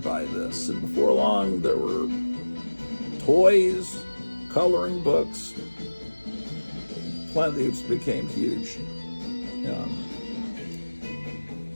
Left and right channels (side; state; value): both; inverted; correlation -1.00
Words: by this. And before long, there were toys, coloring books. Planet of the Apes became huge.